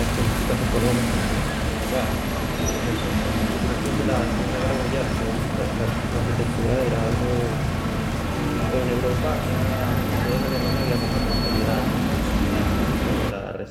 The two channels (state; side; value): identical; both; correlation 1.00